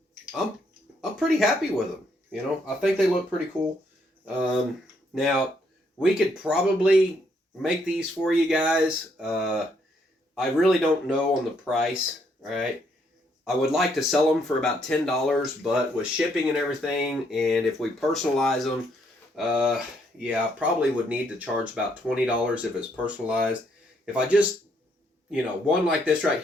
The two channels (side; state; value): both; normal; correlation 0.72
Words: pretty happy with them. You know, I think they look pretty cool. Now we could probably make these for you guys. I really don't know on the price, right? I would like to sell them for about $10, but with shipping and everything, and if we personalize them, yeah, I probably would need to charge about $20 if it's personalized. If I just, you know, one like this right